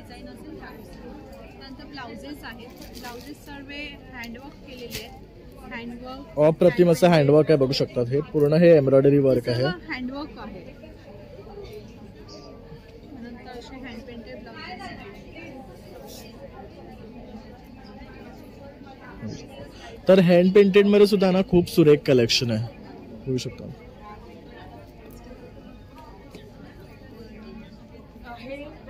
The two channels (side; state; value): both; identical; correlation 1.00